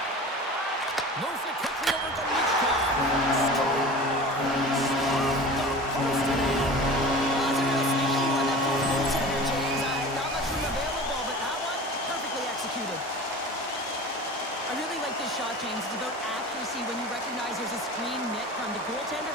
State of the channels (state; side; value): normal; both; correlation 0.37